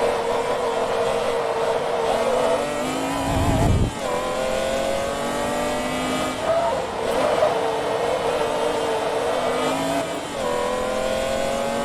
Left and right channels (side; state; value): both; identical; correlation 1.00